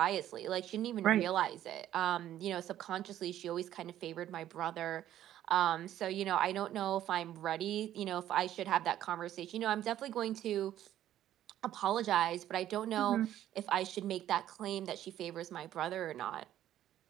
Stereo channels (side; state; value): left; quieter; 12.2 dB